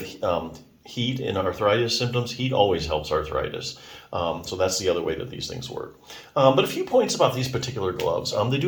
heat in arthritis symptoms, heat always helps arthritis. So that's the other way that these things work. But a few points about these particular gloves. They do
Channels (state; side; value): identical; both; correlation 1.00